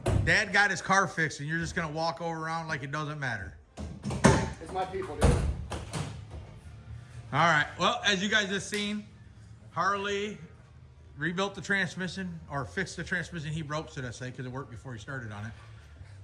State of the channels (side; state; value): both; identical; correlation 1.00